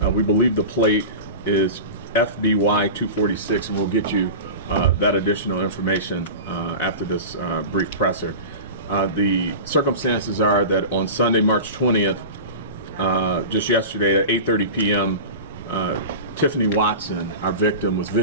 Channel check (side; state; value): both; inverted; correlation -0.31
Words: We believe the plate is FBY 246, and we'll get you that additional information after this brief presser. The circumstances are that on Sunday, March 20th, just yesterday at 8:30 p.m., Tiffany Watson, our victim, was